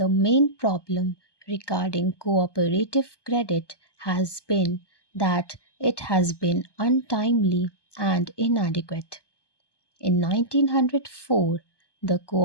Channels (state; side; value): late; right; 1.2 ms